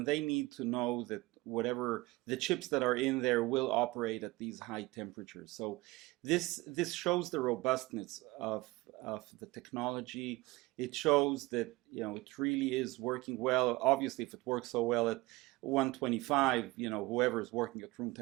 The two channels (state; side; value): quieter; left; 21.1 dB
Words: they need to know that whatever the chips that are in there will operate at these high temperatures. So this shows the robustness of the technology. It shows that it really is working well. Obviously, if it works so well at 125, whoever is working at room